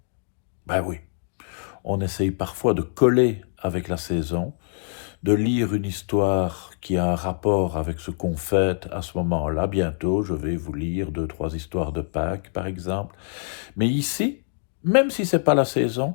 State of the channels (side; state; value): right; silent; digital silence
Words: Ben oui, on essaye parfois de coller avec la saison, de lire une histoire qui a un rapport avec ce qu'on fête à ce moment-là. Bientôt, je vais vous lire deux, trois histoires de Pâques, par exemple. Mais ici, même si c'est pas la saison,